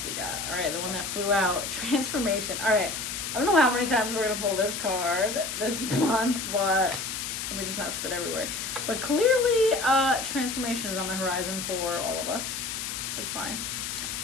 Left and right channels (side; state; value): left; noise; hiss, 4 dB below the sound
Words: we got. All right, the one that flew out, transformation. All right, I don't know how many times we're gonna pull this card this month, but let me just not spit everywhere. But clearly, transformation is on the horizon for all of us. That's fine.